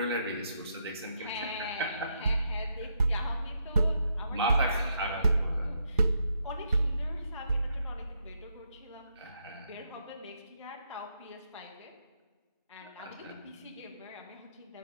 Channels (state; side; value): inverted; both; correlation -0.77